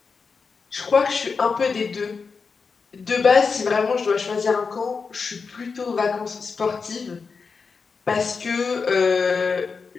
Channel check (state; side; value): quieter; right; 5.1 dB